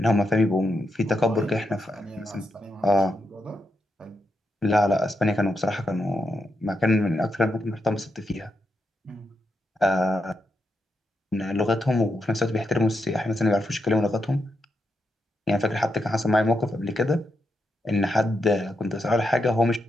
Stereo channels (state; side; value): normal; both; correlation 0.83